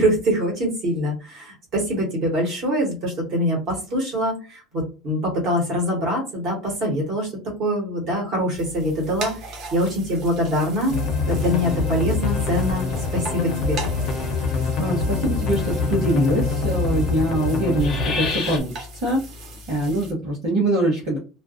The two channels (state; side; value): normal; both; correlation 0.33